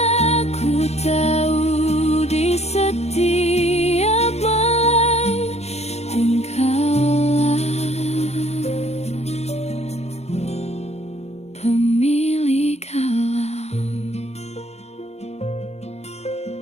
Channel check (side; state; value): right; late; 0.31 ms